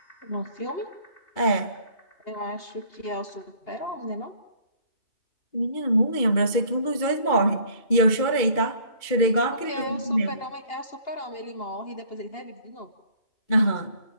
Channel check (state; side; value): late; right; 2.3 ms